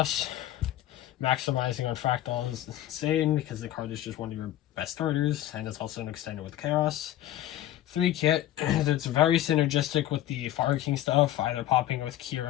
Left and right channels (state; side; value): quieter; right; 13.3 dB